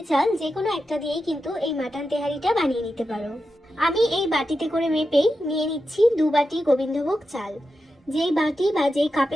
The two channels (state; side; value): normal; both; correlation 0.89